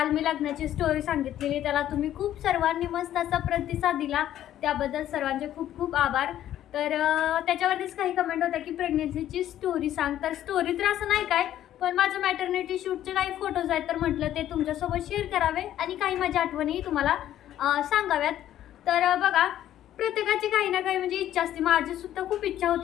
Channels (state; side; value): quieter; right; 12.0 dB